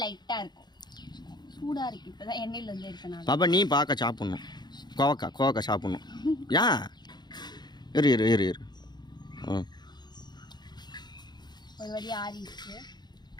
லைட்டா இருக்கும். சூடா இருக்கு. இப்பதான் எண்ணெயில இருந்து எடுக்கணும். பாப்பா நீ பாக்க சாப்பிடணும். கோவக்காய் சாப்பிடணும். ஏன்? இரு. ஒரு வழி ஆறிடுச்சு.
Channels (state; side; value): late; right; 0.21 ms